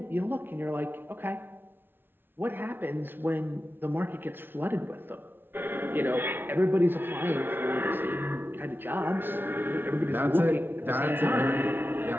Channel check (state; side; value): late; left; 0.10 ms